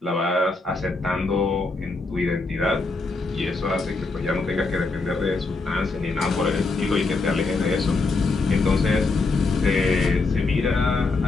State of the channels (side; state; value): right; quieter; 3.7 dB